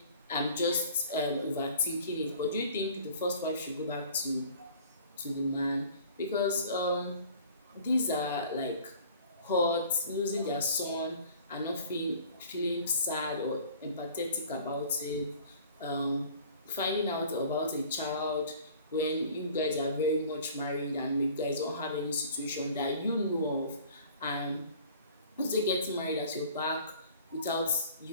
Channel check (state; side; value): inverted; both; correlation -0.48